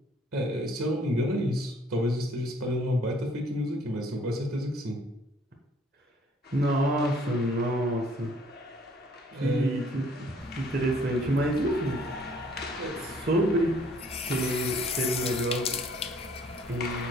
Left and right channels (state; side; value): normal; both; correlation 0.60